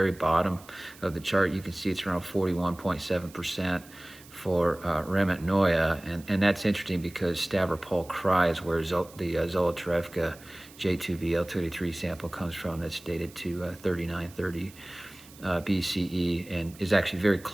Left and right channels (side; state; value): right; noise; hiss, 22 dB below the sound